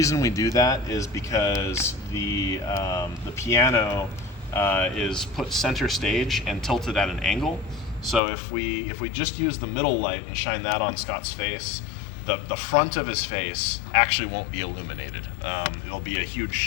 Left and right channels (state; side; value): drops out; right; at 8.2 s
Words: we do that is because the piano is put center stage and tilted at an angle. So if we just use the middle light and shine that on Scott's face, the front of his face actually won't be illuminated. It'll be a huge